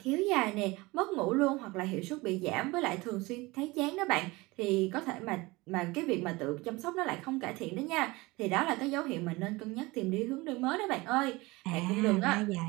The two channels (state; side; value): quieter; left; 22.4 dB